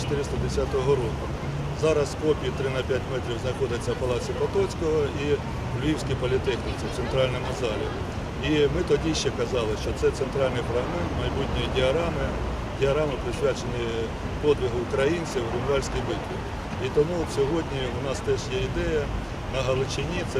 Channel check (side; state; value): both; identical; correlation 1.00